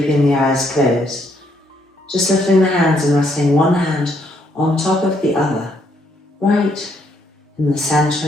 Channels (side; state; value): both; normal; correlation 0.72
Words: the eyes closed, just lifting the hands and resting one hand on top of the other, right in the